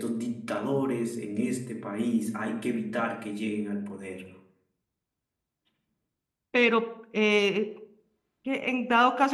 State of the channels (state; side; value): identical; both; correlation 1.00